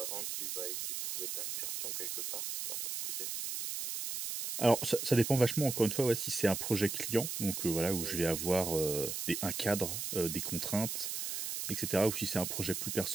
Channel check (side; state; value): right; noise; hiss, 4 dB below the sound